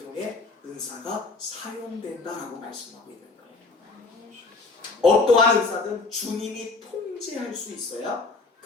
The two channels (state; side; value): quieter; right; 3.8 dB